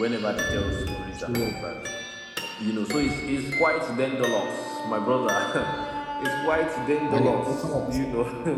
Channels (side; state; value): both; identical; correlation 1.00